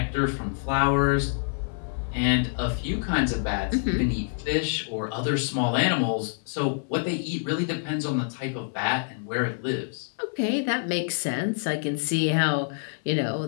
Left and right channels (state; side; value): silent; right; 60 dB below the other